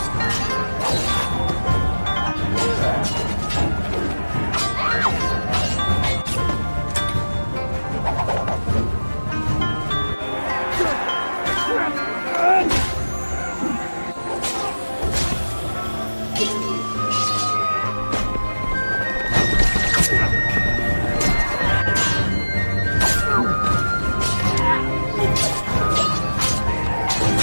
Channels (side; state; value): both; inverted; correlation -1.00